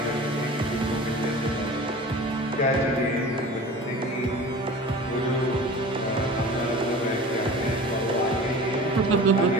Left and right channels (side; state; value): both; normal; correlation 0.38